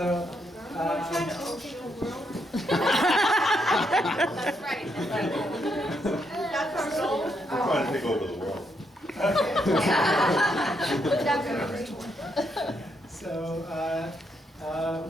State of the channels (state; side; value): normal; both; correlation 0.78